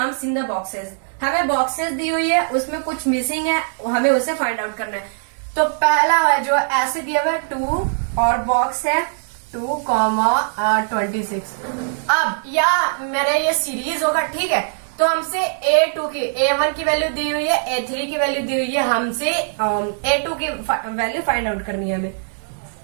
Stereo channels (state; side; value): silent; left; digital silence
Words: in the boxes. हमें बॉक्सेस दी हुई है, उसमें कुछ मिसिंग है, हमें उसे फाइंड आउट करना है। तो पहला है जो ऐसे दिया हुआ है 2 और बॉक्स है 2,26। अब या मेरे ये सीरीज होगा। ठीक है, तो हमसे A2 की A1 की वैल्यू दी हुई है, A3 की वैल्यू दी हुई है, हमसे A2 की वैल्यू फाइंड आउट करनी है हमें।